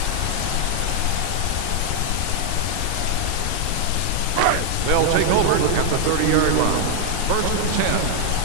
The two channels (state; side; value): different; both; correlation 0.00